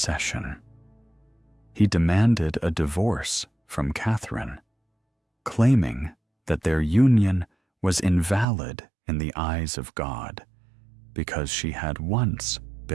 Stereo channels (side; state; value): left; drops out; at 8.5 s